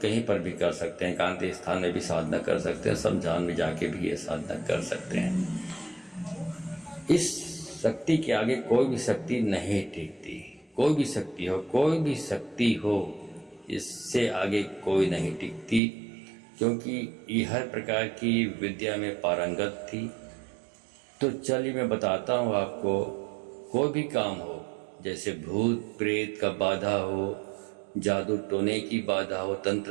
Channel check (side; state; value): left; drops out; at 15.8 s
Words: पर भी कर सकते हैं, एकांत स्थान में भी साधना कर सकते हैं, शमशान में जाके भी ये साधना कर सकते हैं। इस शक्ति के आगे कोई भी शक्ति नहीं टिकती। कोई भी शक्ति हो, कोई भी शक्ति हो, इससे आगे कोई नहीं टिकती, क्योंकि ये हर प्रकार की विद्या में पारंगत थी। तो चलिए मैं बताता हूँ आपको, कोई भी काम हो, जैसे भूत प्रेत का बाधा हो, जादू टोने की बाधा हो,